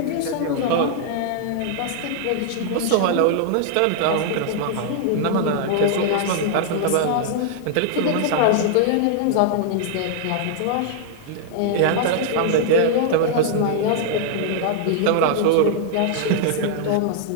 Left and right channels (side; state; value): both; different; correlation -0.01